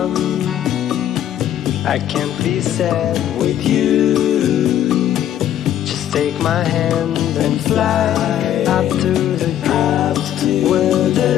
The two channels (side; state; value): right; quieter; 11.2 dB